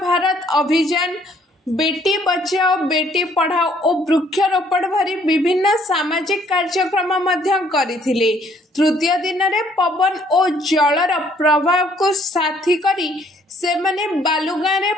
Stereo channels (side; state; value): both; normal; correlation 0.63